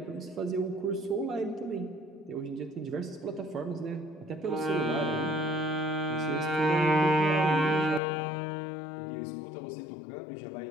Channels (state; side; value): drops out; right; at 8.0 s